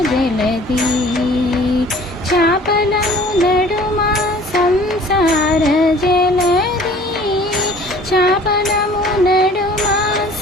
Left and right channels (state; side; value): normal; both; correlation 0.50